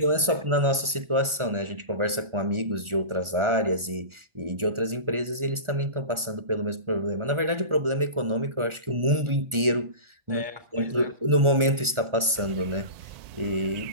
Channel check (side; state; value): left; late; 1.4 ms